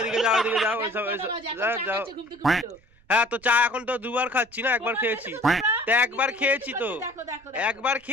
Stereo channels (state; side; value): noise; right; rumble, 30 dB below the sound